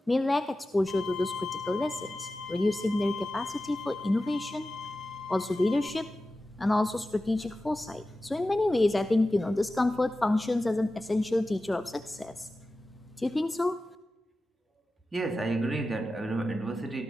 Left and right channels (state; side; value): normal; both; correlation 0.94